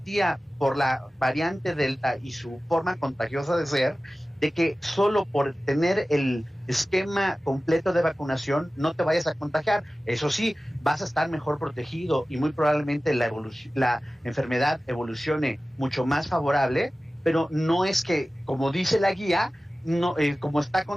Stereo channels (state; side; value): normal; both; correlation 0.96